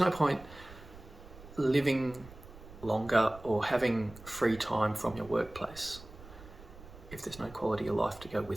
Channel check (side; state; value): right; noise; rumble, 18 dB below the sound